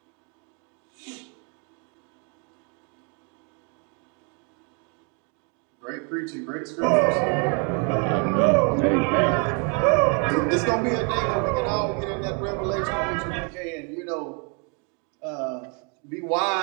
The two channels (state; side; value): quieter; left; 35.8 dB